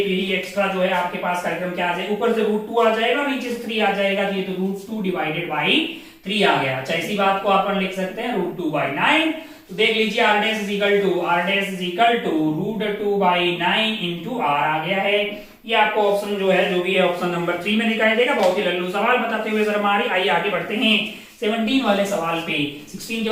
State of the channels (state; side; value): identical; both; correlation 1.00